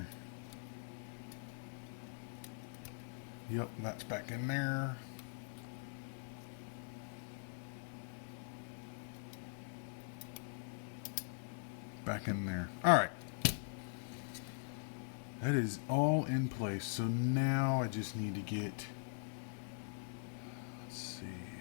Yep, that's back in there. Back in there. All right. That is all in place. So now I just need to get, let's see,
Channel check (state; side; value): silent; right; digital silence